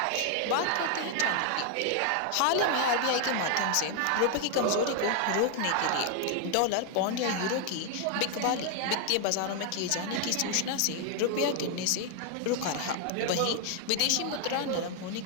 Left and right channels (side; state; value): both; different; correlation 0.00